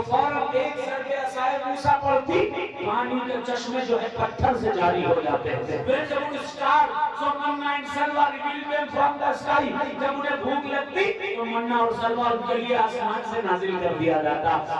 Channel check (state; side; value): identical; both; correlation 1.00